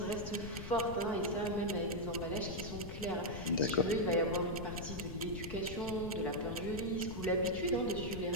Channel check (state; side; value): noise; left; rumble, 9 dB below the sound